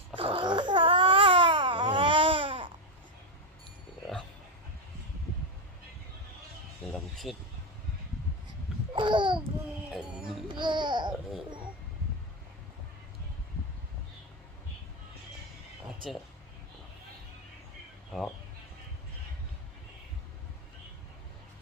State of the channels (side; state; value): both; normal; correlation 0.06